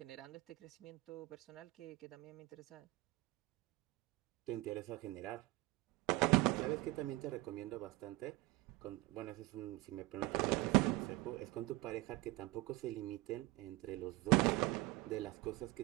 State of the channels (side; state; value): left; quieter; 20.4 dB